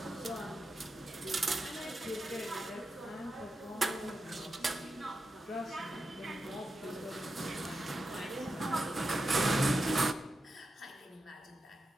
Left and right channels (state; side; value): normal; both; correlation 0.88